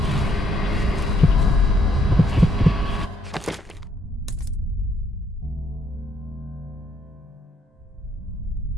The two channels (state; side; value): normal; both; correlation 0.70